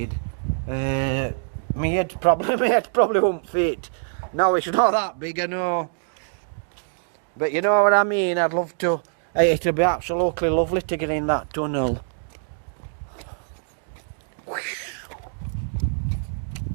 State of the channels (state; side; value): silent; left; digital silence